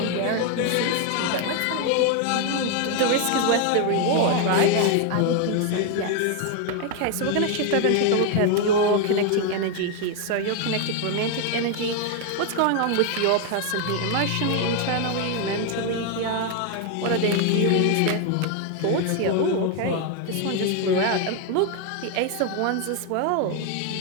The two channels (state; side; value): different; both; correlation 0.01